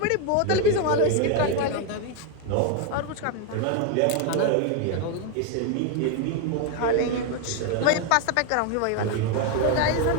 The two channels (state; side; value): different; both; correlation 0.01